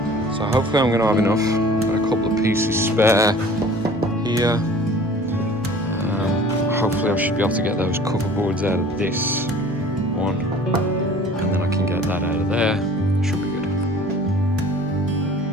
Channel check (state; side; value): normal; both; correlation 0.47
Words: So hopefully I'm going to have enough. Got a couple of pieces spare here. Hopefully I should be able to get those cover boards out of this one, and then I can get that out of there. Should be good.